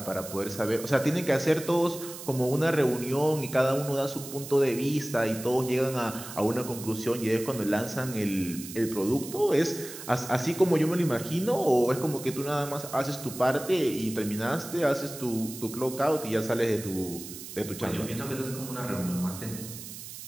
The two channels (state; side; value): noise; right; hiss, 12 dB below the sound